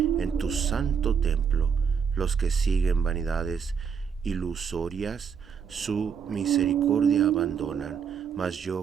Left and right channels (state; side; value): quieter; left; 6.8 dB